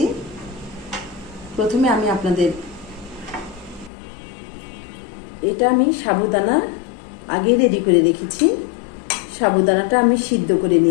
প্রথমে আমি আপনাদের এটা আমি সাবুদানা আগে রেডি করে রেখেছি। সাবুদানাটা আমি সিদ্ধ করে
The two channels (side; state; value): right; drops out; at 3.9 s